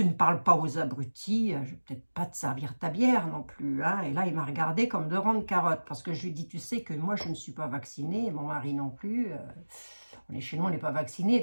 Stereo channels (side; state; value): both; inverted; correlation -1.00